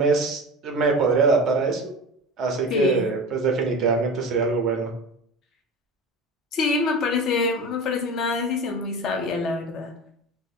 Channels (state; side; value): normal; both; correlation 0.31